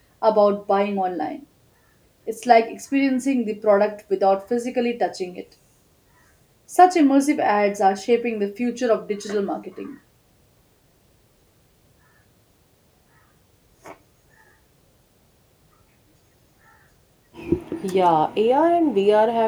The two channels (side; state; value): both; identical; correlation 1.00